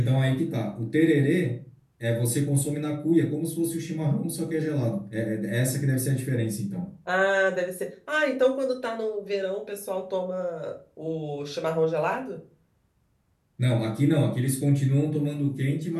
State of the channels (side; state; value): both; identical; correlation 1.00